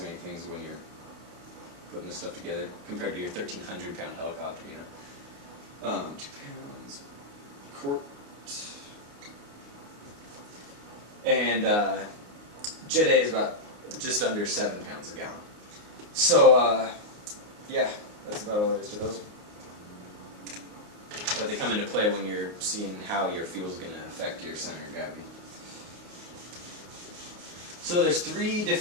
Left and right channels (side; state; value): left; late; 29 ms